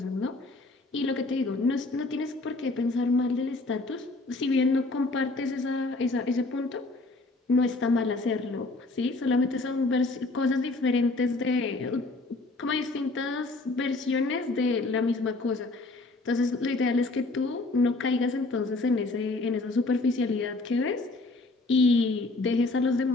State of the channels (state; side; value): quieter; right; 3.2 dB